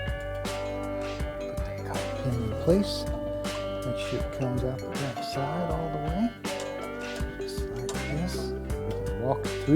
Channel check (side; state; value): both; identical; correlation 1.00